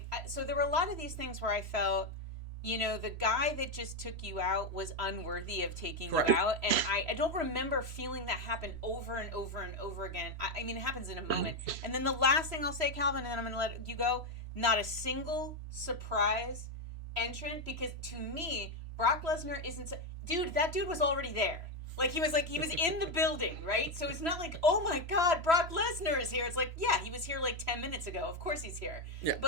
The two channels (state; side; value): late; left; 3.0 ms